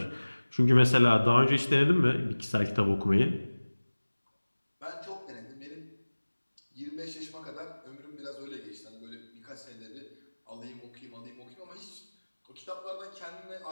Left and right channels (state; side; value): inverted; both; correlation -1.00